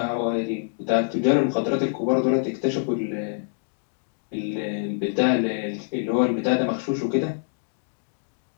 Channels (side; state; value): right; silent; digital silence